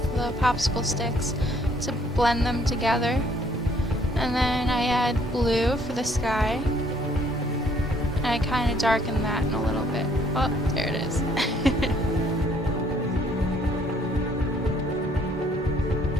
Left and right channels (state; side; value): normal; both; correlation 0.63